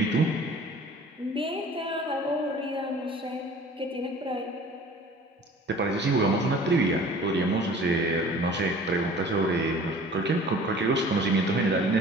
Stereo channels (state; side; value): normal; both; correlation 0.46